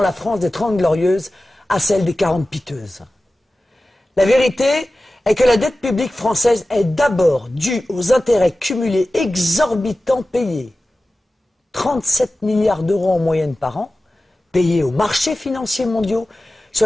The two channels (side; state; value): both; normal; correlation 0.95